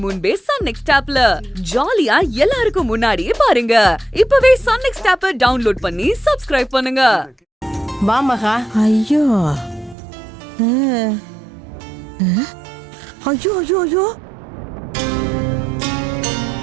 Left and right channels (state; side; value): drops out; left; at 10.0 s